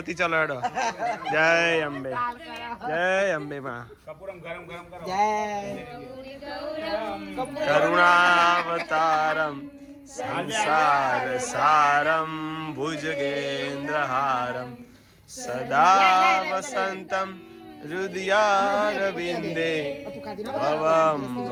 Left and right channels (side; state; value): both; identical; correlation 1.00